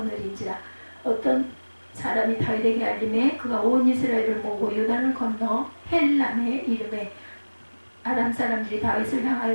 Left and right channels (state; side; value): inverted; both; correlation -1.00